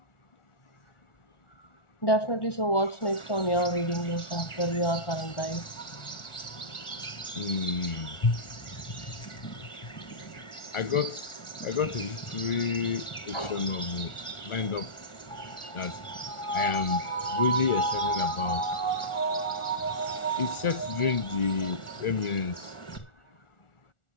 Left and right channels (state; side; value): late; right; 1.4 ms